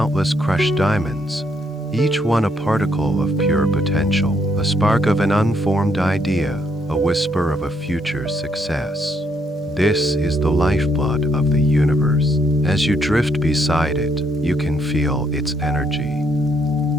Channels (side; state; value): both; normal; correlation 0.73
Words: crushed diamonds, each one a particle of pure potential, a spark of an unformed idea, a whisper of a future success. This is the lifeblood of the universe. As you drift beside it, you can feel its energy.